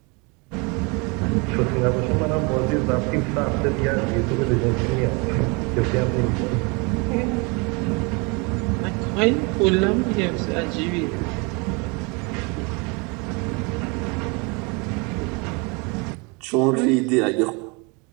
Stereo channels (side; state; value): left; quieter; 29.9 dB